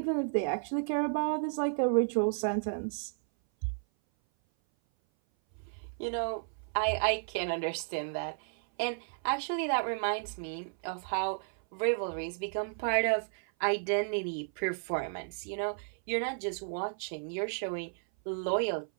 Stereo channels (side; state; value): left; silent; 56 dB below the other